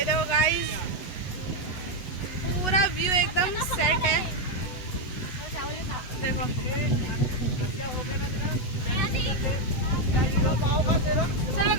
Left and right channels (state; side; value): late; right; 8.1 ms